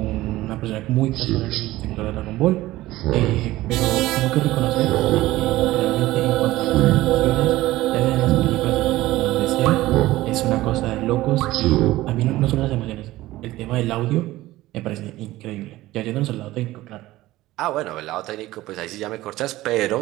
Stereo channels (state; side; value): quieter; left; 17.0 dB